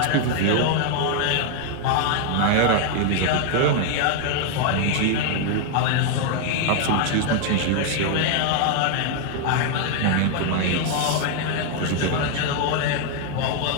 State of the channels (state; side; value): different; both; correlation 0.00